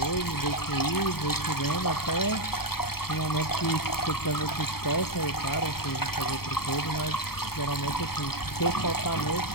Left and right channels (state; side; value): late; right; 0.95 ms